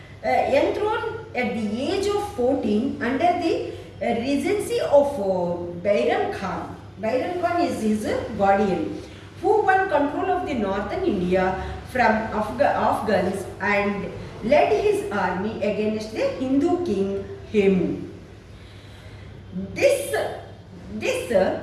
enthroned at the age of 14 under the regency of Bairam Khan. Bairam Khan is his guardian, who won control of the northern India from Afghans and led his army against the Hindu king Hemu. This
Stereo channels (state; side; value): identical; both; correlation 1.00